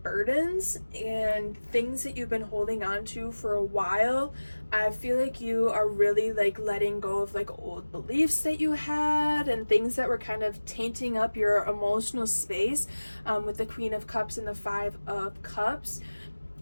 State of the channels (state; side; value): inverted; both; correlation -1.00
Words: burdens and things that you've been holding on to for a while. I feel like you are really like letting go of like old beliefs that you had and things that were kind of tainting up your emotional space, with the Queen of Cups and the 5 of Cups.